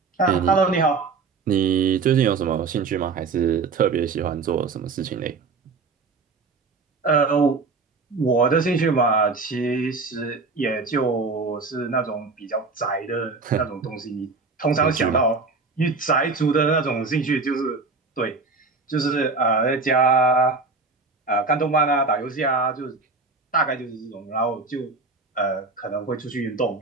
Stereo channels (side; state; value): left; quieter; 4.2 dB